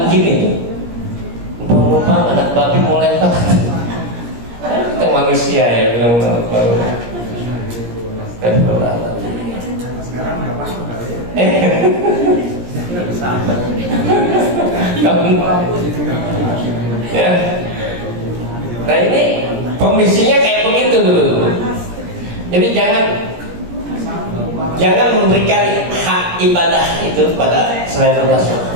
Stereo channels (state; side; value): late; left; 17 ms